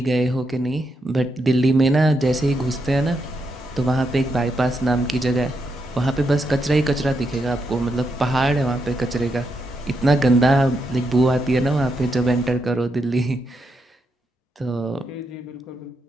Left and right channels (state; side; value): normal; both; correlation 0.82